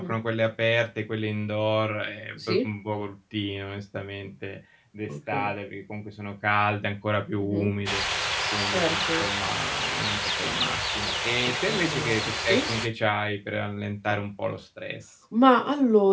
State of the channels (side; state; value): both; identical; correlation 1.00